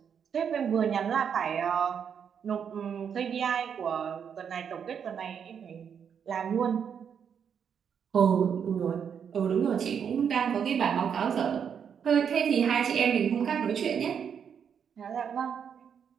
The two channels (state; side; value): quieter; left; 7.5 dB